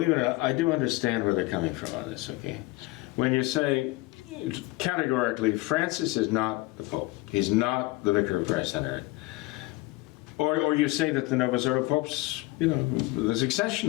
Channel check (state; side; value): quieter; right; 20.7 dB